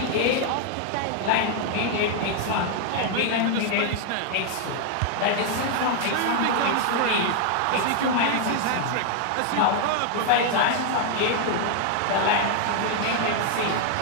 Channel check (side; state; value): both; different; correlation 0.00